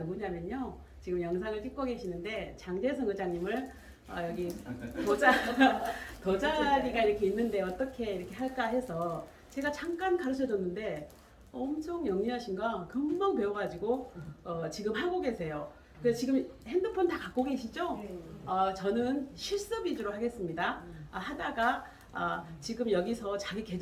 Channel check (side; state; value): both; identical; correlation 1.00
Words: 지금 영상을 찍고 계시는데 장재성 의장님을 여기 도자리가 이렇게 있는데 어떻게 이렇게 할까 해서 제가 잠깐 가르쳐 줬는데 엄청 영리하신가 금방 배워가지고 지금 하고 계세요. 그래서 지금 핸드폰 다 갖고 계시죠? 저는 실습 위주로 하겠습니다. 하다가 지금 여기서 자기